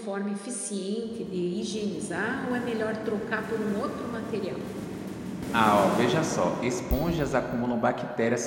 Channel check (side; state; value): both; identical; correlation 1.00